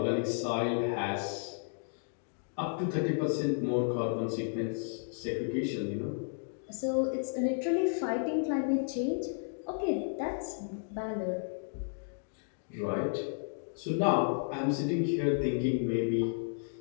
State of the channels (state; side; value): silent; right; digital silence